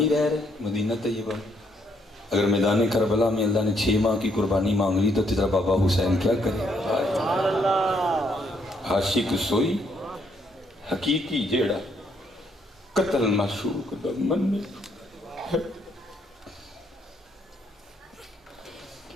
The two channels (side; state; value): both; normal; correlation 0.72